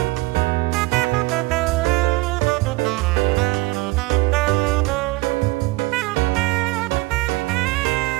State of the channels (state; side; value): quieter; left; 22.0 dB